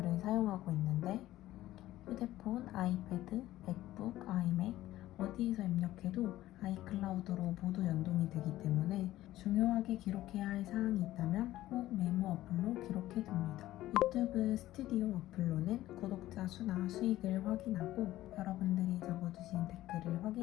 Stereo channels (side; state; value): right; quieter; 15.1 dB